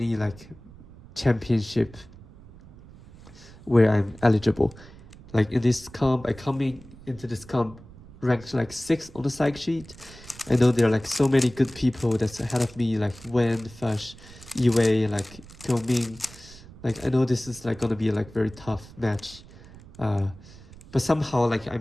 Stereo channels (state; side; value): noise; right; rumble, 20 dB below the sound